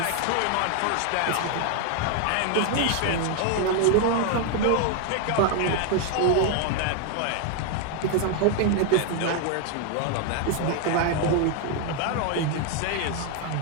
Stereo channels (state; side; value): different; both; correlation 0.01